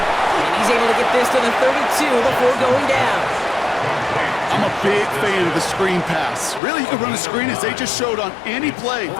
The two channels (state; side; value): drops out; right; at 6.6 s